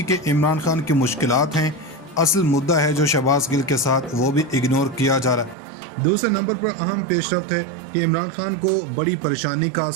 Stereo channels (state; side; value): drops out; left; at 5.6 s